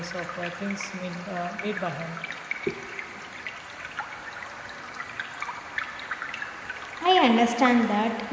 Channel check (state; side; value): identical; both; correlation 1.00